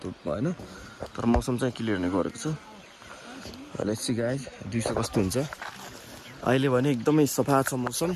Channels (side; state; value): both; identical; correlation 1.00